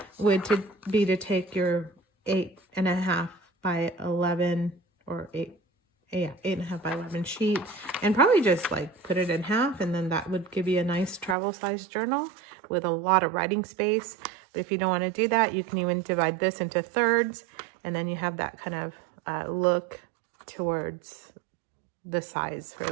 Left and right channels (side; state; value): left; drops out; at 11.4 s